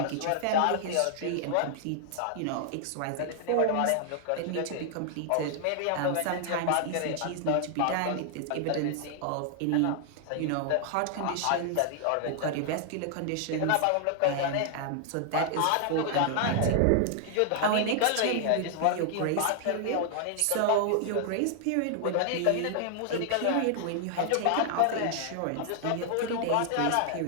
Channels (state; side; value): different; both; correlation 0.00